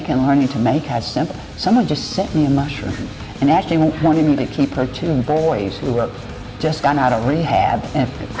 and learning to make how simple. Someone just sent me a mushroom and actually wanted me to keep her two boys who were just got out of rehab. And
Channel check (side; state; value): both; identical; correlation 1.00